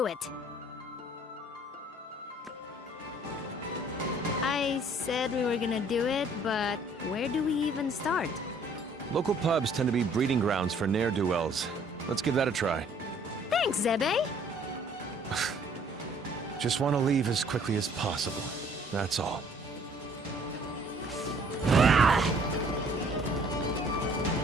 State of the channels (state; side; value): normal; both; correlation 0.58